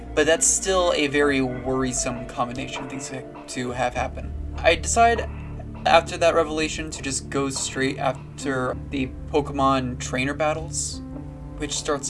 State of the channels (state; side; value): identical; both; correlation 1.00